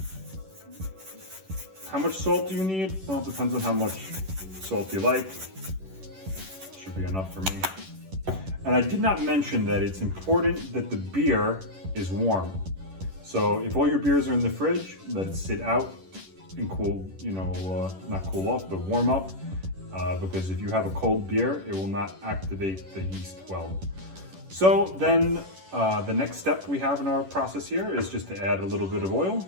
How much salt do you need? Well, it depends on how much salt you like. Should be enough for me. And I did not mention that it's important that the beer is warm. So if all your beers are in the fridge, let it sit out and cool, not cool off, but warm up. Because if you have a cold beer, it will not activate the yeast well. So then the next step we have in our process here is just to add a little bit of oil.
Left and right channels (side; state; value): left; late; 11 ms